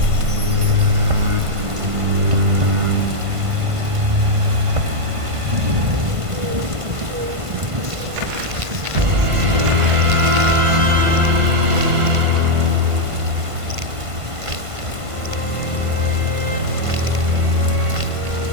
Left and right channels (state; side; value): late; left; 1.5 ms